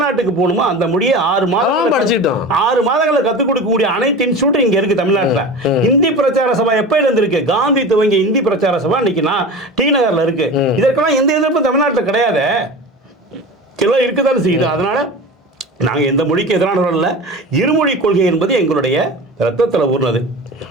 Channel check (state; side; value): normal; both; correlation 0.32